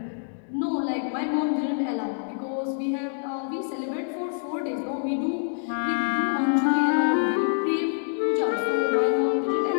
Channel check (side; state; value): right; silent; digital silence